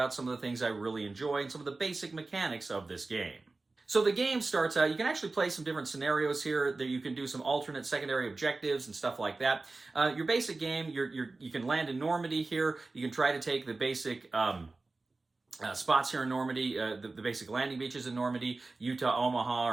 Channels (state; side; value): quieter; left; 3.5 dB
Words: some of the things I really enjoy and some of the basic mechanics of this game. So the game starts out, you can actually play some different scenarios here, that you can do some alternate secondary objectives and stuff like that. Your basic game, you can land in Normandy here, you can try to take the basic spots here in Normandy, the basic landing beaches in Normandy, Utah, Omaha,